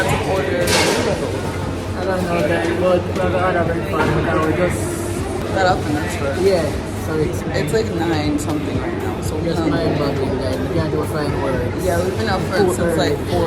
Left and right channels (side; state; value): both; identical; correlation 1.00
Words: to order. I don't know that, but we're gonna have fun. Now we just That up in this first. yeah. So It's like 9 something right now. So we're just mind boggling, like we can't do fine words. yeah, we've been up for since like